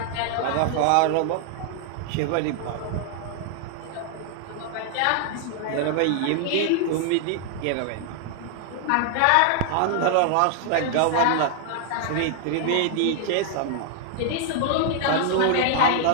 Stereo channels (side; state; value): both; different; correlation 0.00